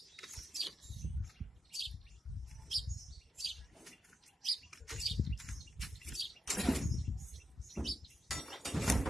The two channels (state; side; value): normal; both; correlation 0.87